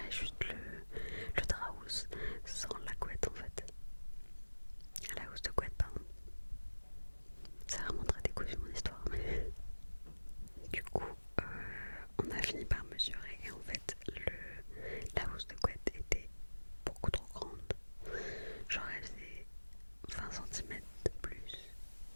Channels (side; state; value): both; inverted; correlation -1.00